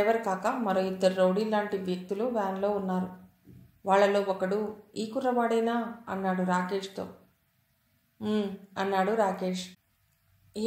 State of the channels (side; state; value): both; identical; correlation 1.00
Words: కాక మరో 2 రౌడీ లాంటి వ్యక్తులు వ్యాన్లో ఉన్నారు. వాళ్లలో ఒకడు ఈ కుర్రవాడేనా అన్నాడు రాకేష్తో. అన్నాడు రాకేష్.